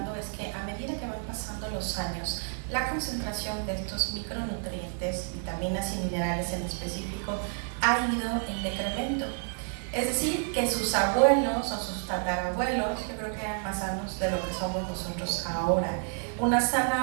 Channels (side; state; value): left; silent; 57 dB below the other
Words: es que a medida que van pasando los años, la concentración de estos micronutrientes, vitaminas y minerales en específico, ha ido en decremento. Es decir, que sus abuelos o sus tatarabuelos, yo creo que eran más sanos de lo que somos nosotros ahora. Una